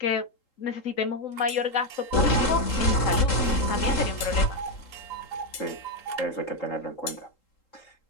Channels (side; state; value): right; late; 3.8 ms